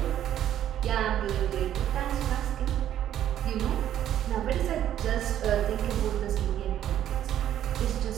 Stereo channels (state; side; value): quieter; left; 11.2 dB